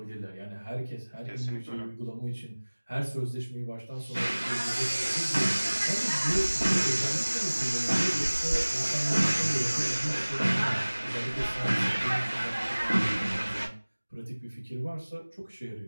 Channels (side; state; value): both; inverted; correlation -1.00